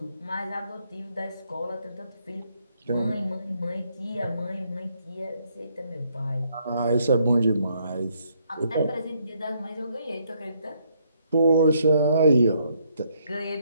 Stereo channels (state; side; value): inverted; both; correlation -0.72